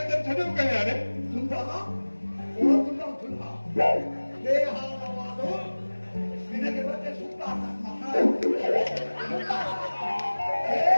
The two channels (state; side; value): inverted; both; correlation -1.00